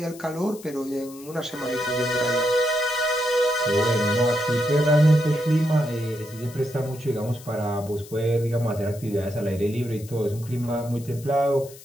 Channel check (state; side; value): noise; left; hiss, 19 dB below the sound